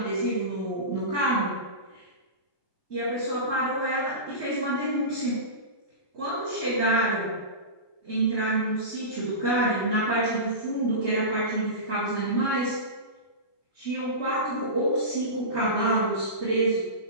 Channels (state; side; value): late; right; 1.2 ms